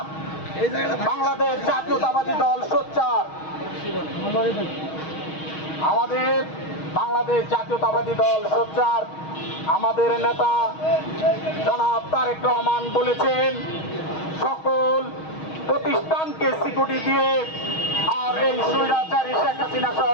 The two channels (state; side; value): late; right; 6.3 ms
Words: বাংলাদেশ জাতীয়তাবাদী দল সোচ্চার, আমাদের বাংলাদেশ জাতীয়তাবাদী দল সোচ্চার। আমাদের নেতা জনাব তারেক রহমান বলেছেন, সকল প্রতিষ্ঠানকে সিকিউরিটি দিয়ে আর এই স্বৈরাচারী শেখ হাসিনা সহ